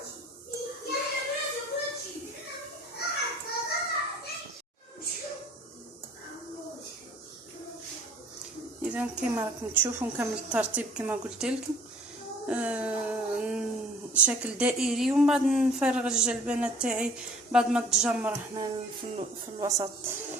اذا كما راكم تشوفوا نكمل الترتيب كما قلت لكم، شكل دائري، ومن بعد نفرغ الجلبانه تاعي بعد ما تجمر هنا في الوسط.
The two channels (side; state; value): both; normal; correlation 0.53